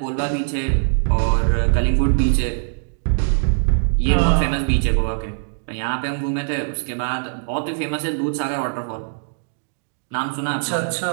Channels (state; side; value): silent; left; digital silence